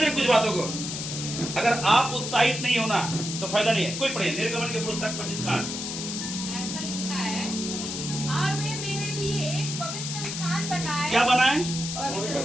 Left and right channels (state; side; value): noise; left; hiss, 5 dB below the sound